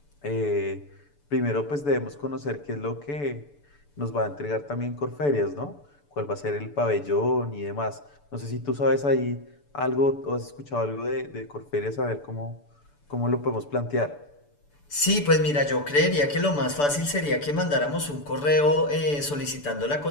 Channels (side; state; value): right; late; 6.9 ms